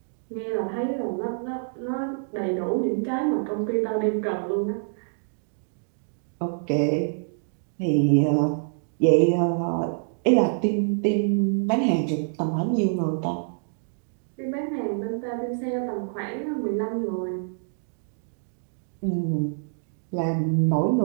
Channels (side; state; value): left; silent; digital silence